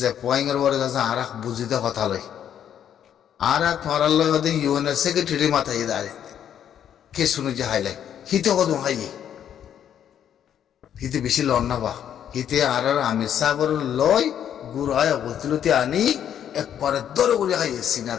पॉइंट और वाले जैसा आरख बुझिता कथा लाई आरा तुम्हारा लोग अदे यूएन सेक्रेटरी माता ये दारे के सुनो जहाइले हिते को दूँ हाई हिते बिशी लौटना बा हिते आरा आमिर सागर लॉय गुराया बोलते आनी एक पर दो गुरी हाई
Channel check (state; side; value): quieter; right; 9.6 dB